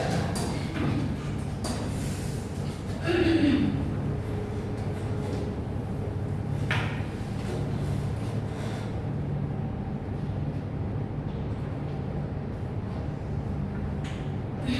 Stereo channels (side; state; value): both; identical; correlation 1.00